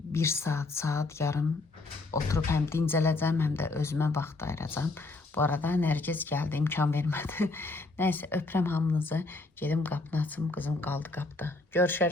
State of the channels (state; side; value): quieter; right; 3.3 dB